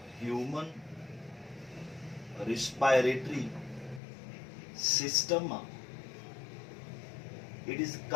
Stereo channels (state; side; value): drops out; right; at 4.0 s